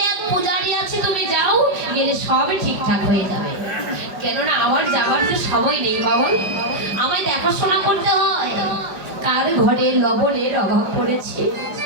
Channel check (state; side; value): late; left; 5.2 ms